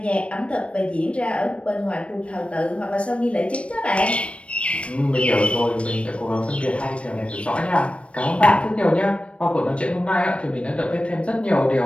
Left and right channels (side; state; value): right; late; 0.061 ms